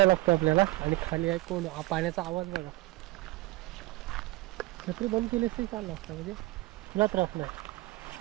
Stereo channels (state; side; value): quieter; left; 20.3 dB